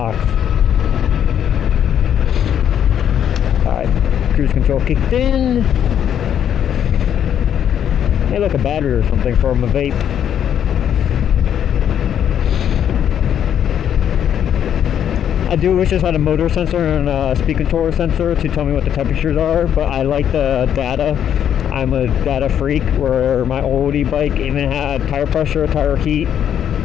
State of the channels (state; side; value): quieter; right; 9.4 dB